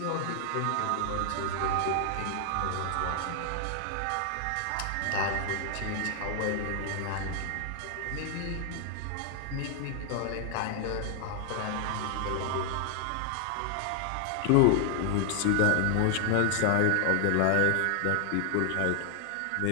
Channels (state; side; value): different; both; correlation 0.00